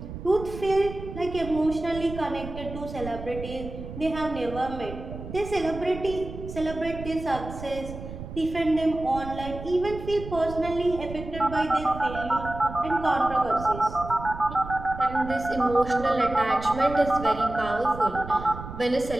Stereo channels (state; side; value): noise; right; rumble, 11 dB below the sound